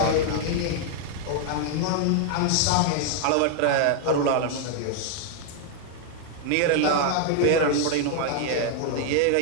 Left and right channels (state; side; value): different; both; correlation 0.00